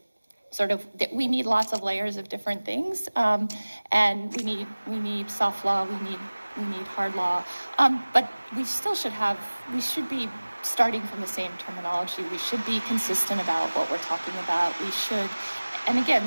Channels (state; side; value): inverted; both; correlation -1.00